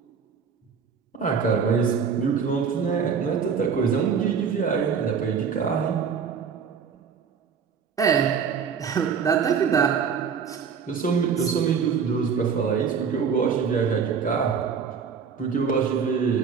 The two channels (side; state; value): left; quieter; 6.5 dB